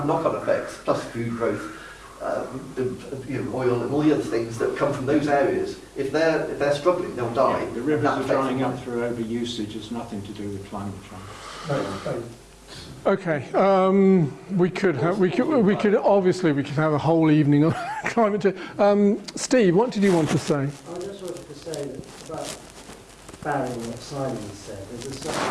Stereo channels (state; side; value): identical; both; correlation 1.00